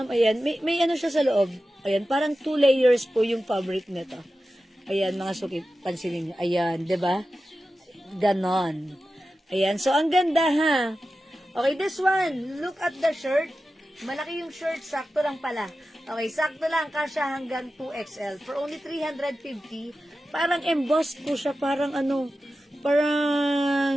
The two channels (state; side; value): normal; both; correlation 0.93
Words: ayan, may ano siya sa loob. Ayan, parang 2 layers po yung fabric nito. Ayan, mga suki, pansinin nyo. Ayan, 'di ba? Ganon. Ayan, so ang ganda, ha? Okay, this one, look at the shirt. Malaki yung shirt, sakto lang pala. Okay, sakto lang, kasya hanggang 2XL. For only 350, parang embossed po siya, parang